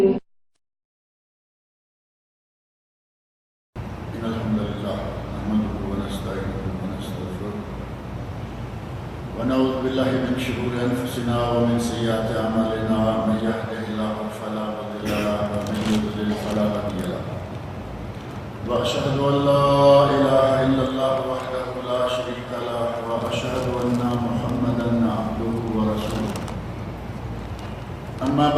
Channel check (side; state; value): both; identical; correlation 1.00